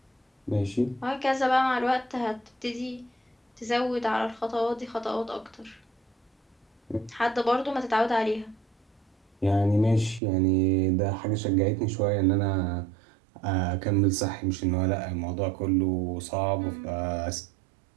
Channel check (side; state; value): left; drops out; at 10.2 s